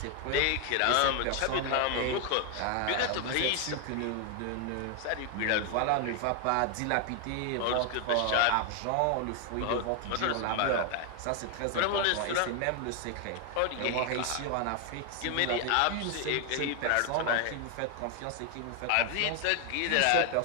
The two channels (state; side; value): different; both; correlation 0.01